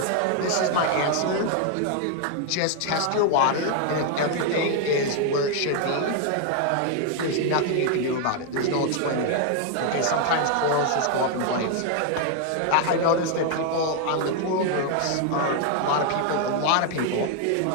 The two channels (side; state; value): both; different; correlation 0.00